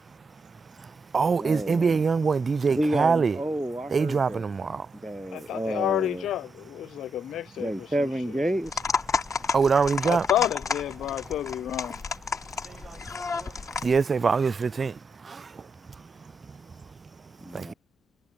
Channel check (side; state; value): both; normal; correlation 0.81